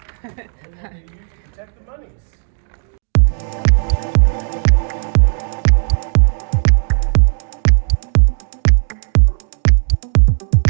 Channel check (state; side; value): silent; left; 59 dB below the other